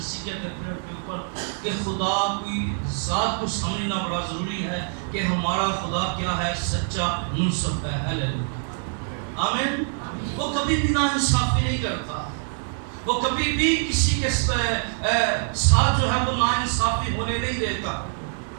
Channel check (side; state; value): left; silent; 62 dB below the other